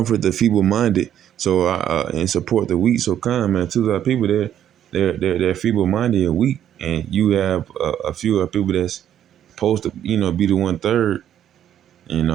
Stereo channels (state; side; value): quieter; left; 10.4 dB